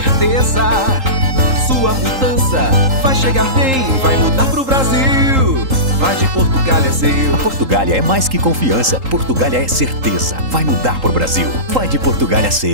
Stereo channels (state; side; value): late; left; 3.8 ms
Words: Sua mudança vai chegar bem, vai mudar pro Brasil. Vai de Portugália é seu. A Portugália é mais que confiança. Portugália é certeza. Vai mudar pro Brasil. Vai de Portugália